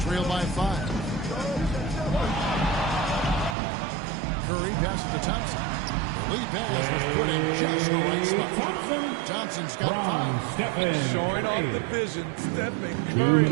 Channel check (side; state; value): left; drops out; at 3.6 s